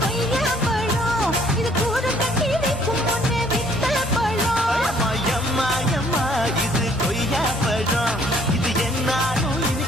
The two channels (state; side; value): normal; both; correlation 0.62